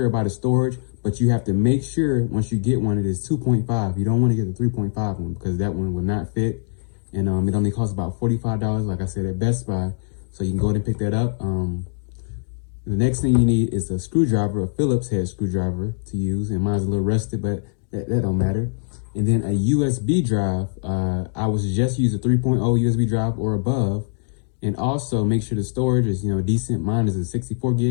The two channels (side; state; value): right; silent; digital silence